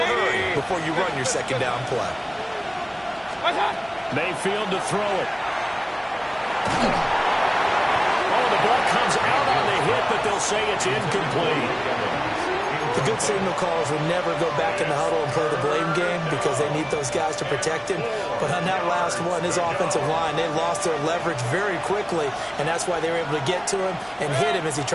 before you run your 2nd down play. Mayfield to throw it. Oh, the ball comes out on the hit, but they'll say it's incomplete. The good signal callers will never go back in the huddle and play the blame game because they need those guys to protect him. But on that last one, his offensive line, they lost their leverage very quickly, and that's why they were able to get to him and hit him as he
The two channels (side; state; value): both; identical; correlation 1.00